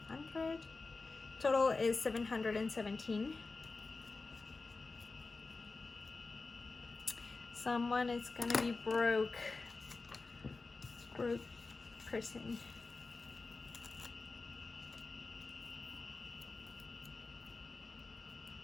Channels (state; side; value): quieter; right; 3.8 dB